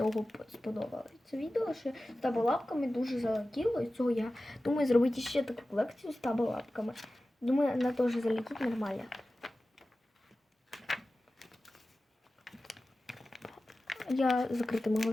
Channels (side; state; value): both; normal; correlation 0.95